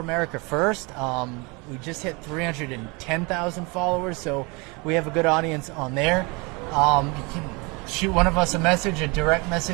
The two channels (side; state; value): left; quieter; 28.3 dB